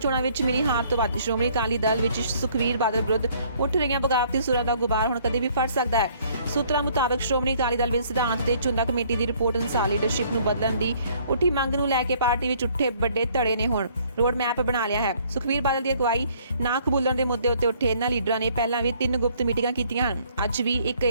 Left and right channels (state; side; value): inverted; both; correlation -0.61